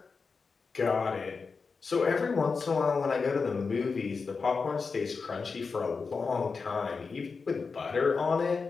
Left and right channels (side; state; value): right; quieter; 4.8 dB